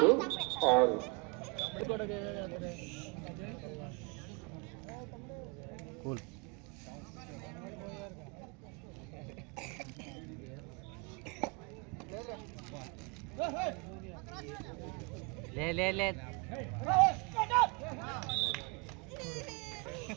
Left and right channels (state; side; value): quieter; left; 30.6 dB